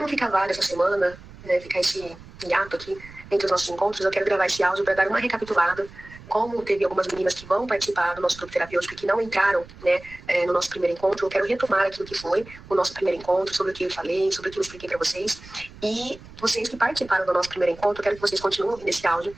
ficar vaga essa semana, né, ficar esse hiato aqui entre os nossos encontros, eu quero gravar esse áudio para dar uma recapitulada. Como teve algumas meninas que vão participar do nosso grupo terapêutico e que não entraram, né, no nosso primeiro encontro, eu quero retomar aquilo que foi o nosso primeiro encontro, sobre o que eu falei, sobre o que eu expliquei para vocês. E vocês que participaram do nosso primeiro encontro, eu quero que vocês continuem nesse áudio,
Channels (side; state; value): right; noise; rumble, 19 dB below the sound